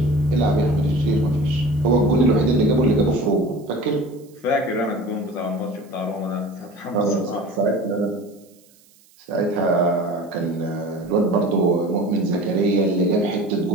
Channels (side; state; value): right; noise; hiss, 30 dB below the sound